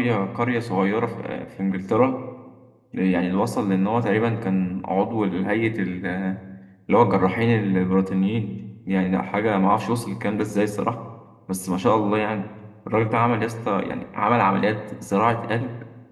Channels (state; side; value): identical; both; correlation 1.00